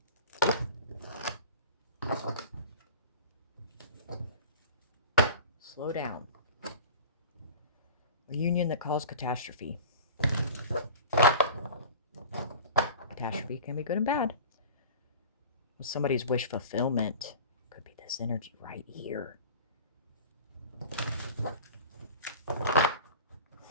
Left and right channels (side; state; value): both; inverted; correlation -0.39